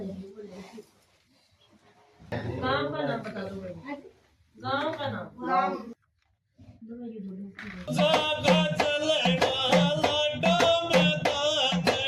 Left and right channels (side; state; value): both; identical; correlation 1.00